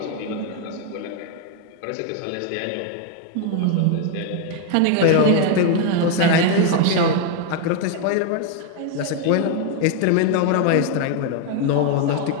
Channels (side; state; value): both; different; correlation 0.01